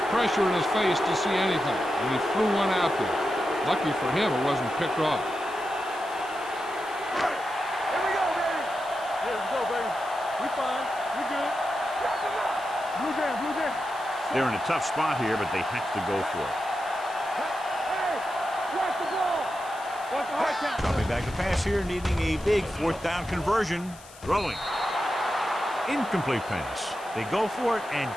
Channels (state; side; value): noise; left; hiss, 21 dB below the sound